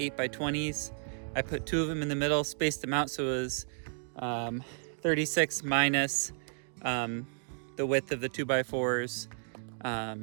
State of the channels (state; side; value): silent; left; 56 dB below the other